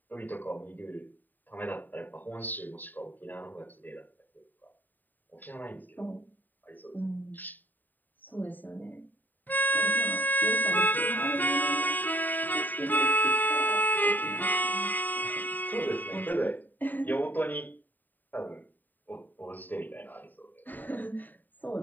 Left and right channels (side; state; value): right; late; 0.088 ms